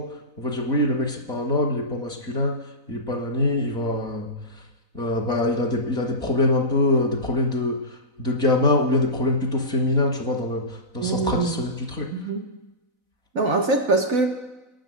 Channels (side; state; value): left; late; 4.0 ms